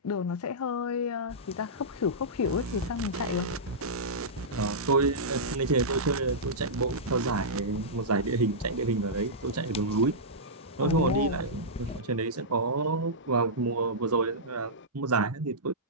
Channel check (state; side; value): normal; both; correlation -0.14